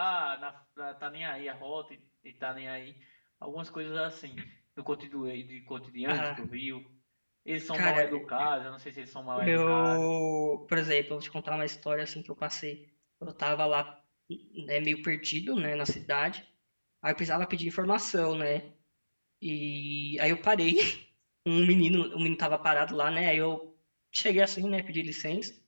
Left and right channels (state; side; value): inverted; both; correlation -1.00